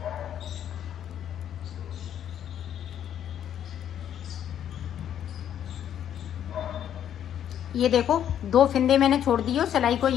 ये देखो 2 फिंदे मैंने छोड़ दिए और सिलाई को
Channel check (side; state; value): right; quieter; 9.9 dB